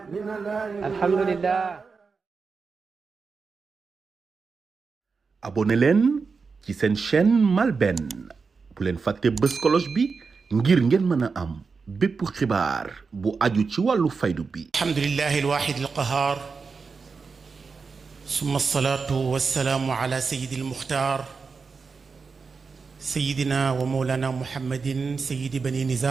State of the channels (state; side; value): quieter; left; 4.9 dB